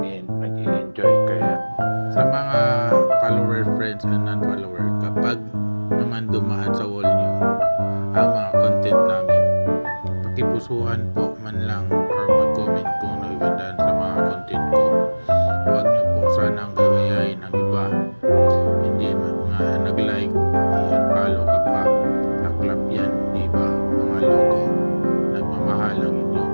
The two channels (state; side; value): inverted; both; correlation -1.00